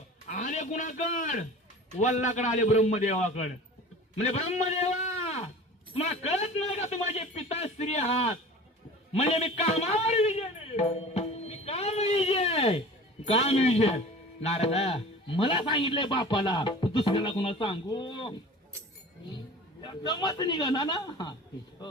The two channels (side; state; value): both; normal; correlation 0.40